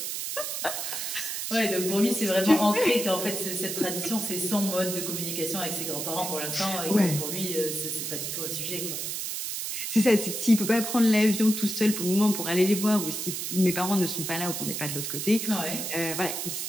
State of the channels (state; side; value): noise; right; hiss, 4 dB below the sound